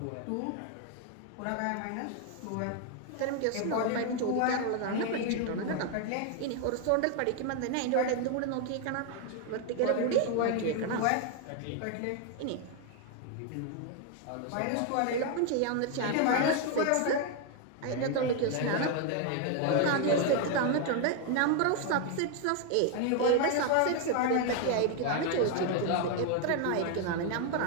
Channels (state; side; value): different; both; correlation 0.01